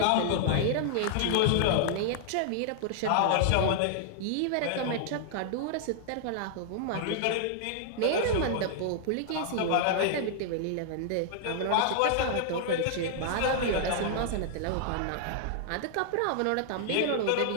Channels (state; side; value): different; both; correlation -0.01